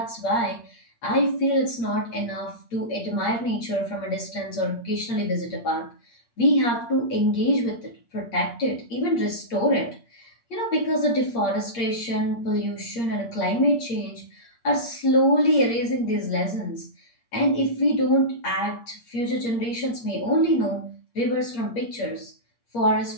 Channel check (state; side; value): late; right; 8.6 ms